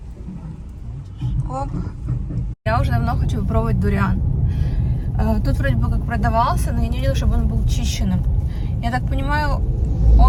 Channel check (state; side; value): identical; both; correlation 1.00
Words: Оп. Я уже давно хочу попробовать дуриан. Тут вроде бы как продавался, но я не видела, чтобы он был чищенным. Я так понимаю,